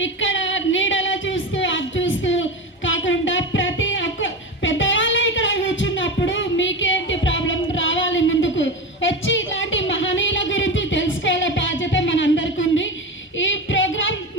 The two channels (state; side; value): normal; both; correlation 0.22